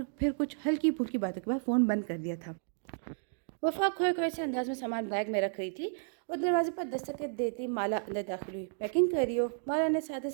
پھر کچھ ہلکی پھلکی باتوں کے بعد فون بند کر دیا تھا۔ وفا کھوئے سے انداز میں سامان بیگ میں رکھ رہی تھی اور دروازے پر دستک دیتی مالا اندر داخل ہوئی۔ پیکنگ کر رہی ہو؟ مالا نے سادے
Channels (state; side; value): silent; left; digital silence